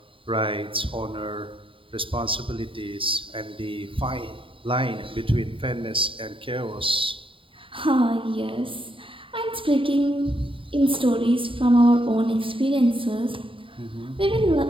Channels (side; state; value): left; late; 0.25 ms